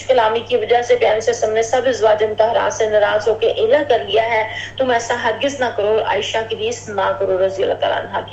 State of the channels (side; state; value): both; identical; correlation 1.00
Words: کلامی کی وجہ سے پیارے سے سب نے سب ازواج مطہرات سے ناراض ہو کے ایلا کر لیا ہے، تم ایسا ہرگز نہ کرو، عائشہ کی ریس نہ کرو رضی اللہ تعالیٰ عنہ